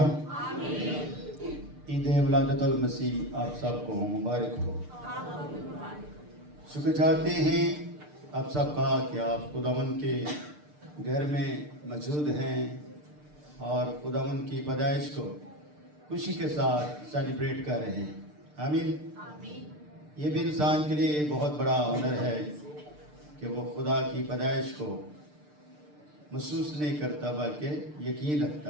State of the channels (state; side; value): late; left; 6.7 ms